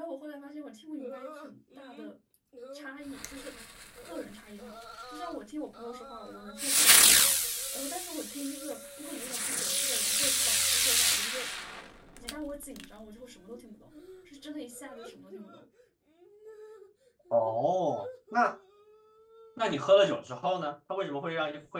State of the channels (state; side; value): identical; both; correlation 1.00